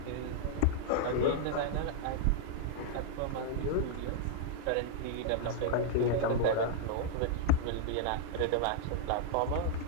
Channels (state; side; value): different; both; correlation -0.01